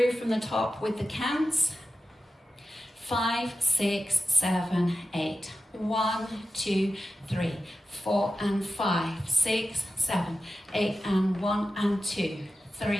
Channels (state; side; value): normal; both; correlation 0.93